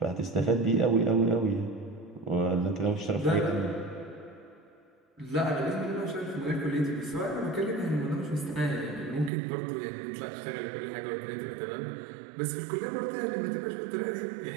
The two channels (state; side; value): drops out; left; at 9.3 s